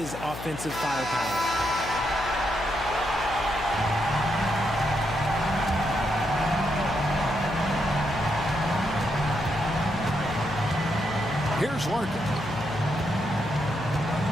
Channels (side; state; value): left; noise; hum, 11 dB below the sound